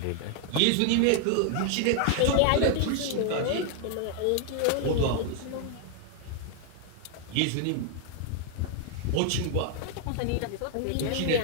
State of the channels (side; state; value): both; different; correlation 0.00